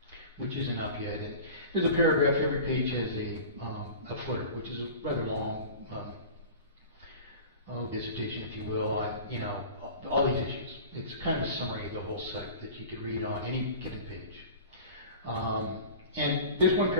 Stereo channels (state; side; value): inverted; both; correlation -0.37